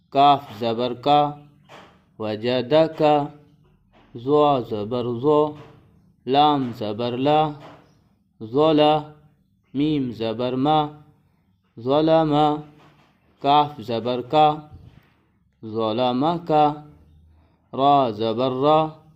کاف زبر کا، وجدک، زوا زبر زو، لام زبر لا، ظلا، میم زبر ما، ظلم، کاف زبر کا، ظلمک، را زبر را،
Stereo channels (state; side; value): identical; both; correlation 1.00